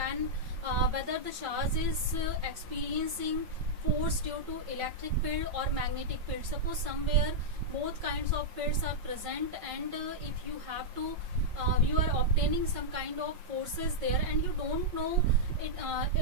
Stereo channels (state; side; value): late; left; 5.4 ms